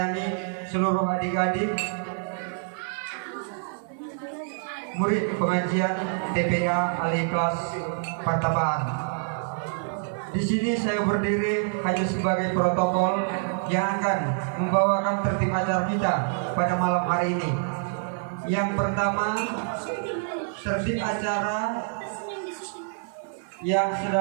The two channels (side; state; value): left; silent; 60 dB below the other